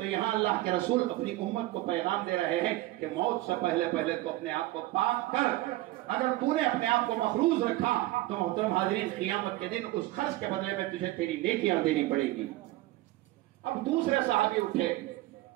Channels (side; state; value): left; quieter; 17.6 dB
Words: یہاں اللہ کے رسول اپنی امت کو پیغام دے رہے ہیں کہ موت سے پہلے تو اپنے آپ کو پاک کر، اگر تو نے اپنے آپ کو مخروض رکھا تو محترم حاضرین قیامت کے دن اس قرض کے بدلے میں تجھے تیری نیکیاں دینی پڑے گی۔ اب دوسرے صحابی اٹھے،